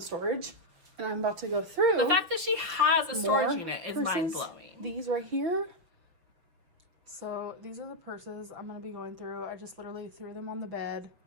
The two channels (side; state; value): left; late; 6.0 ms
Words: and I'm about to go through. The fact that she has a storage unit is mind-blowing. These right here. So these are the purses I'm going to be going through. I just literally threw them on the bed.